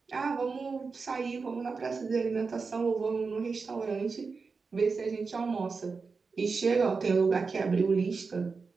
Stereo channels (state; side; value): quieter; left; 4.7 dB